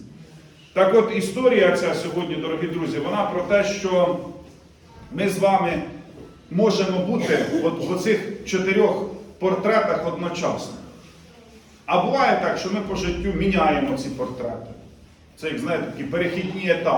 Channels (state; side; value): identical; both; correlation 1.00